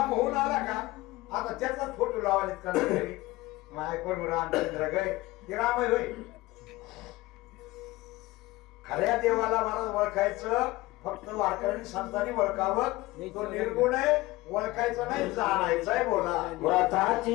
होऊन आला का आता त्याचाच फोटो लावायला कोण रामचंद्र गय ते राम आहे होय. खऱ्या देवाला महाराज ओळखायचं फक्त वारकऱ्यांनी संतांनी ओळखावं. तो निर्गुण आहे ओळखायचं नाही जाणायचं आहे. बोला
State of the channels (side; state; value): right; quieter; 19.4 dB